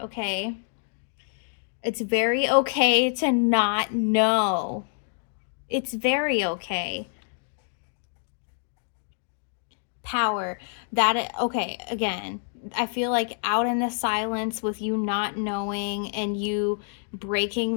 okay? It's very okay to not know. It's very okay. Power. That, okay, again, I feel like out in the silence with you not knowing and you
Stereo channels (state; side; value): silent; right; digital silence